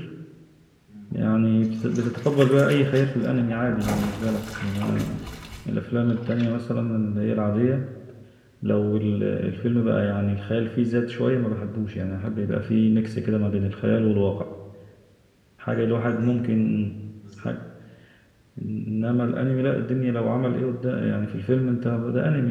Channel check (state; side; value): identical; both; correlation 1.00